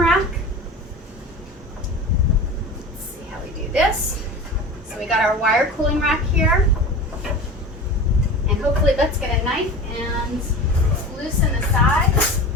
Let's see how we do this. So we got our wire cooling rack here. And hopefully let's get a knife and loosen the sides.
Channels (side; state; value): both; normal; correlation 0.33